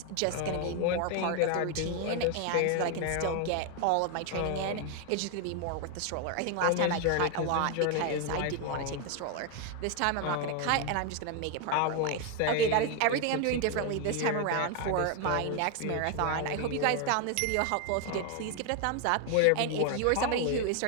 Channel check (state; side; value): different; both; correlation 0.01